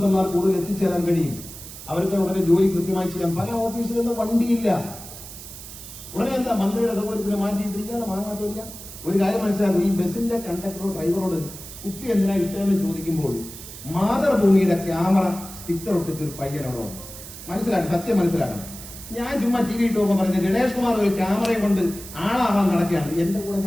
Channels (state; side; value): noise; right; hiss, 13 dB below the sound